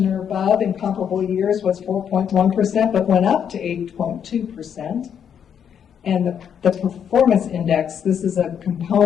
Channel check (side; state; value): right; quieter; 8.2 dB